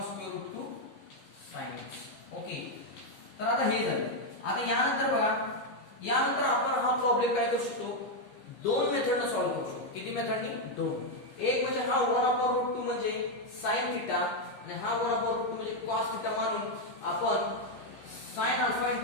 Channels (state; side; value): late; right; 15 ms